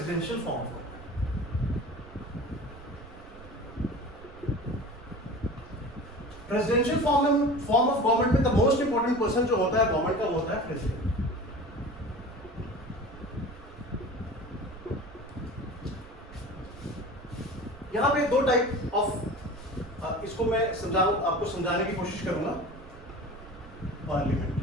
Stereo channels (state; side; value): noise; right; rumble, 18 dB below the sound